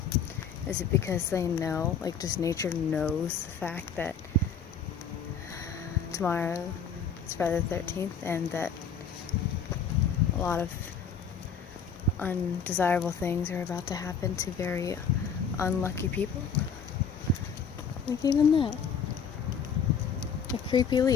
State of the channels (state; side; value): quieter; right; 6.1 dB